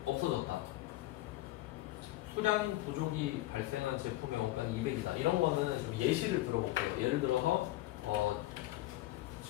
없어졌다. 수량 부족이 발생한 제품의 원가는 200이다. 이런 거는 좀 예시를 들어볼게요. 예를 들어서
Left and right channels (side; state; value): right; quieter; 17.0 dB